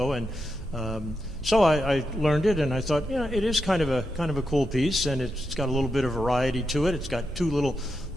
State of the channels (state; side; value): normal; both; correlation 0.86